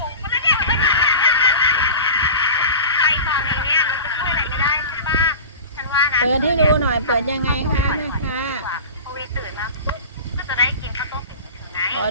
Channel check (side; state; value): both; inverted; correlation -0.34